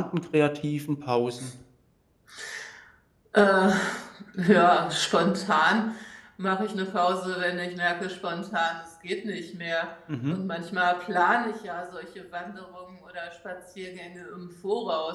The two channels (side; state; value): both; identical; correlation 1.00